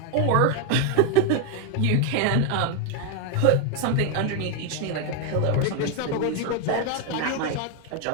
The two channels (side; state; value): both; different; correlation 0.01